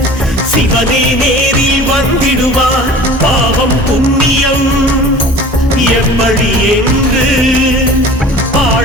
சிவனே நேரில் வந்திடுவார். பாவம் புண்ணியம் எப்படி என்று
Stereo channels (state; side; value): normal; both; correlation 0.42